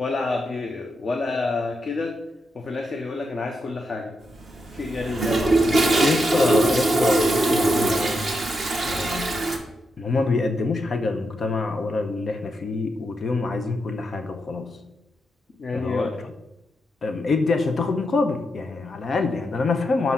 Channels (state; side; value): normal; both; correlation 0.84